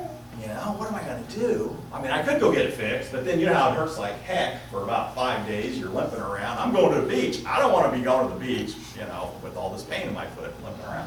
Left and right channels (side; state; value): both; identical; correlation 1.00